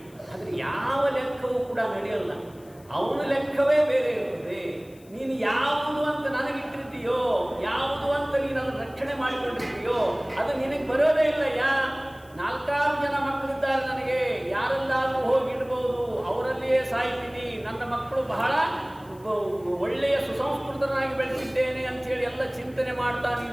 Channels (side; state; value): left; noise; hiss, 27 dB below the sound